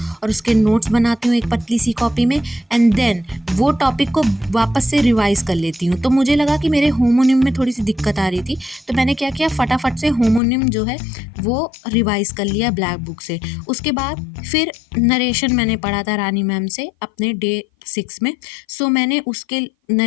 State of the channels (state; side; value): drops out; right; at 10.4 s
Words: और उसके नोट्स बनाती हूँ एक पतली सी कॉपी में एंड देन वो टॉपिक को वापस से रिवाइज़ कर लेती हूँ। तो मुझे लगा कि मेरे होमोनिम में थोड़ी सी दिक्कत आ रही थी, तो मैंने क्या किया, फटाफट से होमोनिम जो है वो रिवाइज़ कर लिया ब्लैक बुक से। उसके बाद फिर नरेशन मैंने पढ़ा था रानी मैम से अपने डे 6 में। सो मैंने उसके